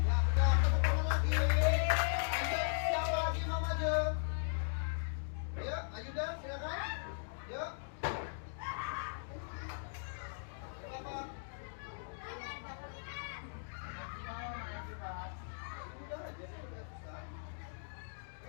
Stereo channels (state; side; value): silent; right; digital silence